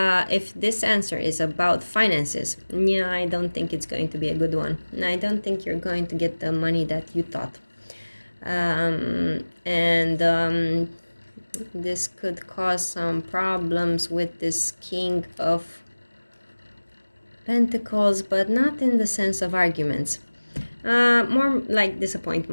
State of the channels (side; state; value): both; inverted; correlation -1.00